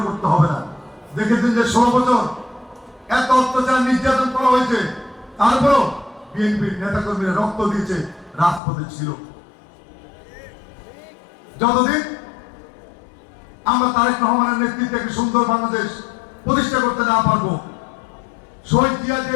করতে হবে না। দেখেছেন যে 16 বছর এত অত্যাচার নির্যাতন করা হয়েছে, তারপরও বিএনপির নেতাকর্মীরা রক্ত দিয়েছে, রাজপথে ছিল। যতদিন আমরা তারেক রহমানের নেতৃত্বে একটি সুন্দর বাংলাদেশ প্রতিষ্ঠা করতে না পারবো, শহীদ জিয়া যে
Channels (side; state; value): right; drops out; at 8.6 s